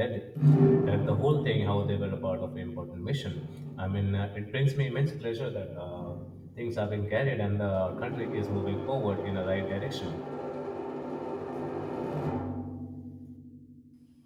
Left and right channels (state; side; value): identical; both; correlation 1.00